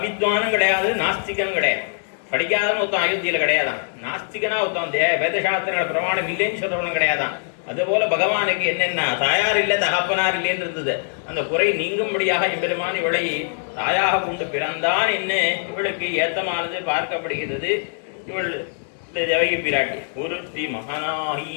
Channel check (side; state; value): right; silent; digital silence